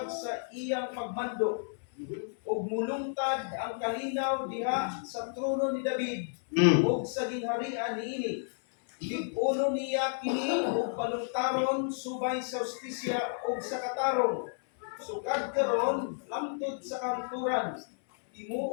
sa iyang pagmando, ug mulungtad ang kalinaw diha sa trono ni David, ug sa gingharian niini. Lig-uno niya kini ug balungtaron subay sa justisya ug sa katarong. Sukad karon lamtod sa kanturan.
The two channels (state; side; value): silent; right; 57 dB below the other